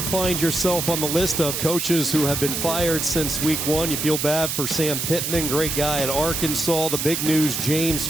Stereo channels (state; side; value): noise; right; hiss, 2 dB below the sound